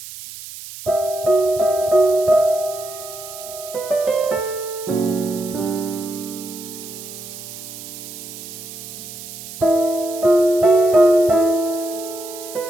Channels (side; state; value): right; noise; hiss, 13 dB below the sound